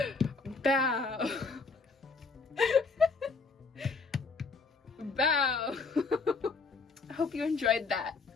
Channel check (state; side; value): quieter; right; 4.4 dB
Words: Bow. Bow. I hope you enjoyed that.